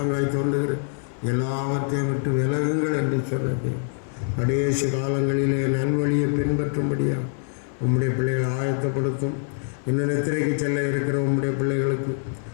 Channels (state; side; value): silent; right; 62 dB below the other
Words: தோன்றுகிற எல்லாவற்றையும் விட்டு விலகுங்கள் என்று சொன்னது. கடைசி காலங்களிலே நல்வழியை பின்பற்றும்படியாக உம்முடைய பிள்ளைகளை ஆயத்தப்படுத்தும். இன்னும் நித்திரைக்கு செல்ல இருக்கிற உம்முடைய பிள்ளைகளுக்கு